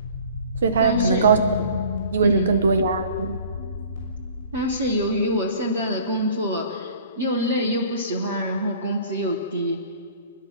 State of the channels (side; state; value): both; inverted; correlation -0.49